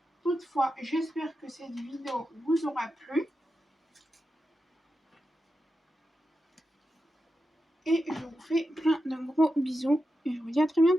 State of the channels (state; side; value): normal; both; correlation 0.89